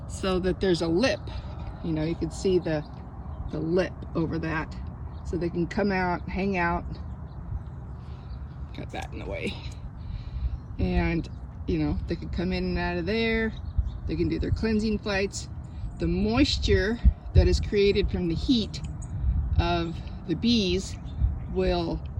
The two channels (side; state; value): both; identical; correlation 1.00